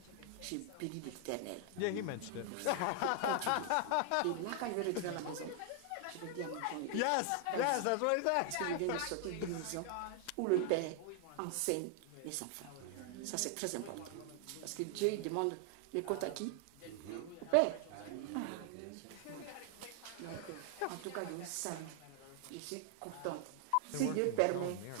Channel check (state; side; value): different; both; correlation 0.00